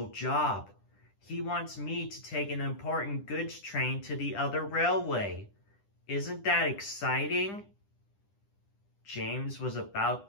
job. He wants me to take an important goods train to the other railway. Isn't that exciting?" James was about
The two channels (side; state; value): right; late; 10 ms